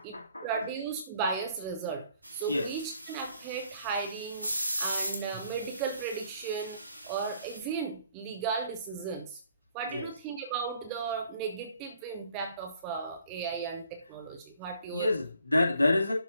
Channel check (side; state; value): both; inverted; correlation -0.61